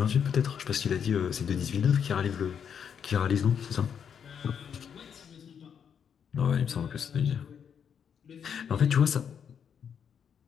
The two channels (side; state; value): right; quieter; 7.7 dB